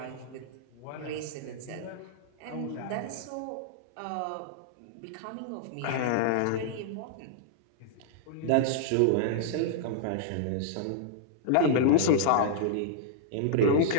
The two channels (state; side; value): different; both; correlation -0.01